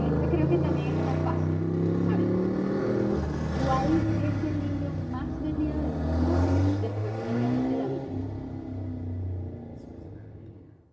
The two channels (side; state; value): both; identical; correlation 1.00